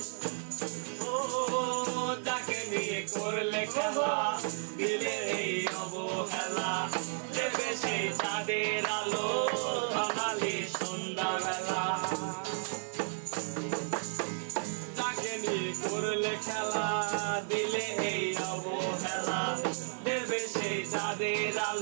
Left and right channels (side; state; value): left; silent; 56 dB below the other